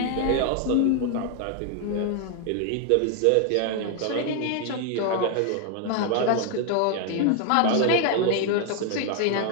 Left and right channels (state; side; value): different; both; correlation 0.01